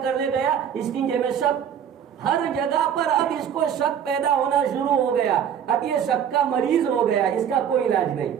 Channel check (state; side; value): quieter; left; 8.6 dB